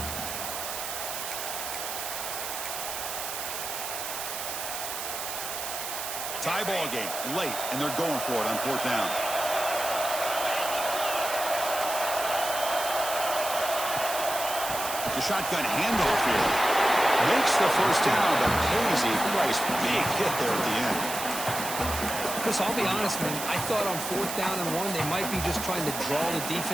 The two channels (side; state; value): right; noise; hiss, 5 dB below the sound